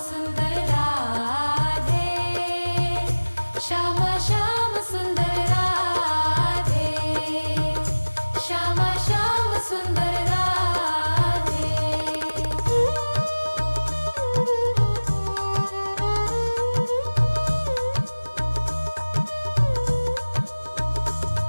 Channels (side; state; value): both; inverted; correlation -1.00